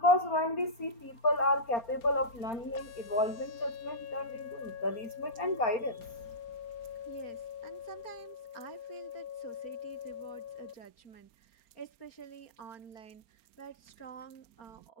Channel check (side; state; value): right; late; 4.3 ms